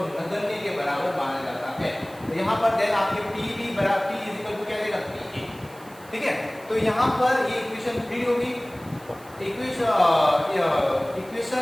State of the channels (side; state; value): right; noise; hiss, 23 dB below the sound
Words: नगण्य के बराबर माना जाता है। तो यहाँ पर देन आपके पी बी बराबर पी इज इक्वल टू क्या रहेगा पी ए, ठीक है। तो यहाँ पर ये इक्वेशन 3 होगी।